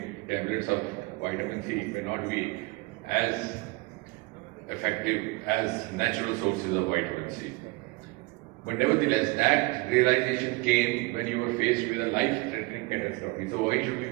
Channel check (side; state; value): left; quieter; 23.2 dB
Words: tablets of vitamin C, it may not be as effective as natural sources of vitamin C. But nevertheless, that realization came when you were faced with a life-threatening catastrophe. So why should we